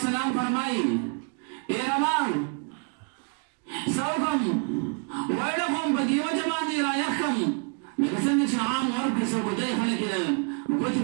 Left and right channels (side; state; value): left; quieter; 36.1 dB